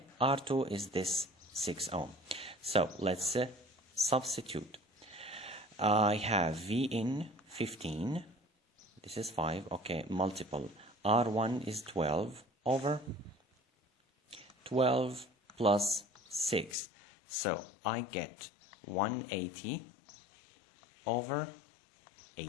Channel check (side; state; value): right; drops out; at 16.8 s